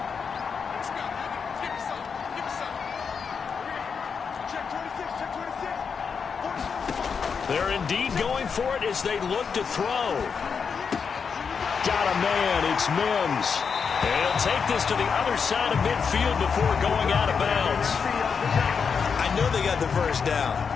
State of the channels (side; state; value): right; quieter; 6.0 dB